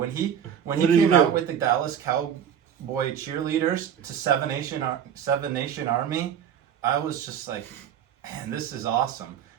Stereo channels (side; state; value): left; quieter; 8.9 dB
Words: he What did he came do? out with the Dallas Cowboy cheerleaders to Seven Nation Army. I was just like, man, this is awesome.